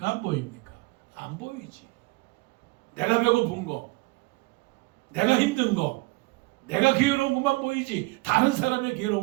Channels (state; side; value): quieter; left; 24.9 dB